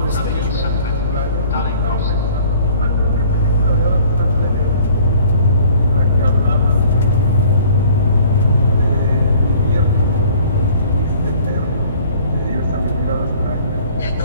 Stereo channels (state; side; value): inverted; both; correlation -0.53